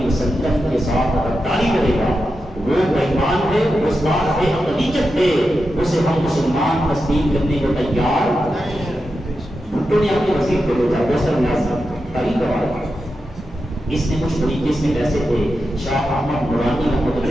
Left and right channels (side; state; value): both; normal; correlation 0.89